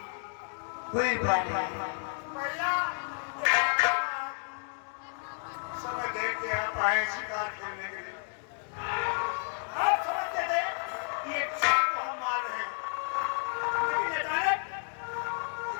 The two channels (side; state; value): right; silent; 56 dB below the other